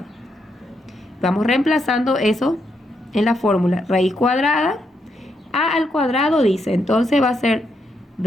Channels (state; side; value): normal; both; correlation 0.80